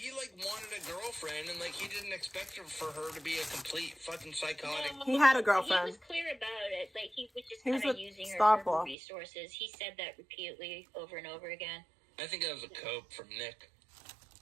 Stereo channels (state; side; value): drops out; left; at 9.0 s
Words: wanted a girlfriend, and like he didn't expect for her to be a complete fucking psychotic. He had a He girlfriend. was clear about it. Like he was just He was kind of with using her Star for her Paw. resources. He said that repeatedly over and over again. I think that was a cope from Nick.